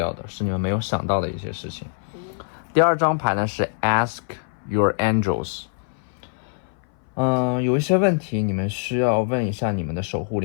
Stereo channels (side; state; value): right; silent; 59 dB below the other